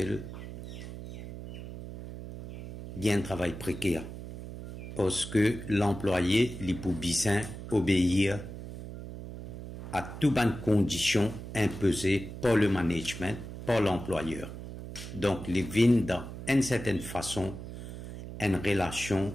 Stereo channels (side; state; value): right; noise; hum, 10 dB below the sound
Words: il y a un travail précaire. Parce que l'employé, il peut bien obéir à toutes les conditions imposées par le management, par l'employeur. Donc, il vient dans une certaine façon une